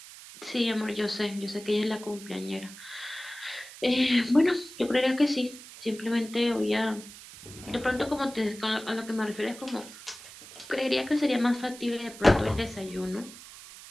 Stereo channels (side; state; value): right; noise; hiss, 16 dB below the sound